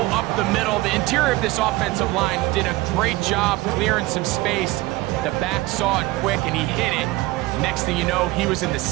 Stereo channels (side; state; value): left; quieter; 19.6 dB